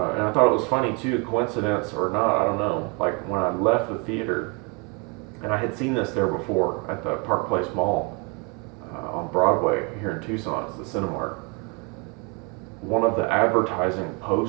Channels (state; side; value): quieter; left; 30.9 dB